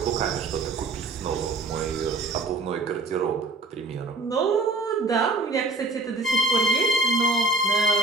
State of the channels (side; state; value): left; quieter; 3.2 dB